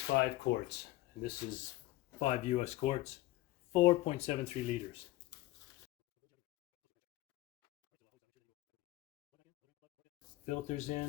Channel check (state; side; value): quieter; right; 17.9 dB